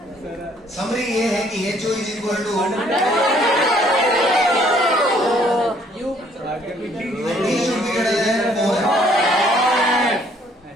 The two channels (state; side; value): normal; both; correlation 0.63